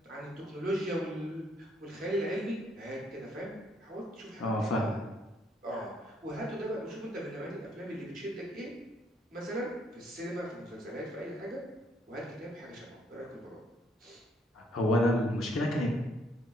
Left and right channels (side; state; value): both; normal; correlation 0.69